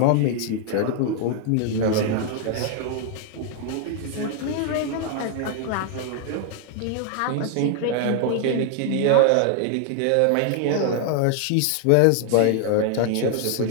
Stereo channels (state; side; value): different; both; correlation 0.00